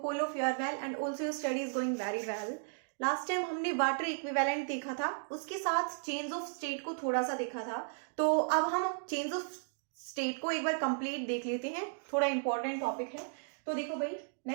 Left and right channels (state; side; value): silent; left; digital silence